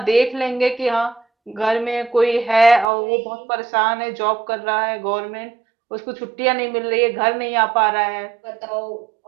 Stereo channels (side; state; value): left; drops out; at 2.9 s